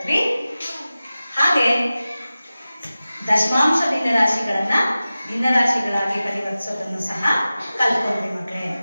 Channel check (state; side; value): inverted; both; correlation -0.96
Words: ಹಾಗೆ ದಶಮಾಂಶ ಭಿನ್ನರಾಶಿಗಳನ್ನ ಭಿನ್ನರಾಶಿಗಳಾಗಿ ಪರಿವರ್ತಿಸೋದನ್ನು ಸಹ ಕಲ್ತ್ಕೊಂಡ್ವಿ.